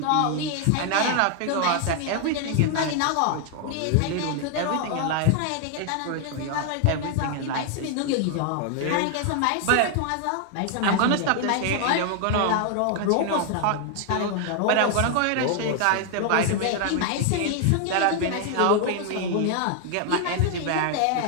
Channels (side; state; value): both; different; correlation 0.00